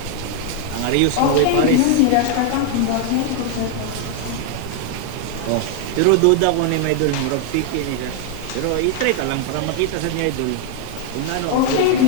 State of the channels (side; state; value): both; different; correlation 0.00